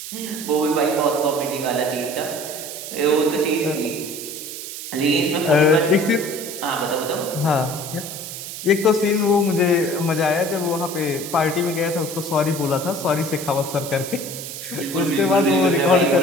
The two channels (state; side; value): noise; right; hiss, 9 dB below the sound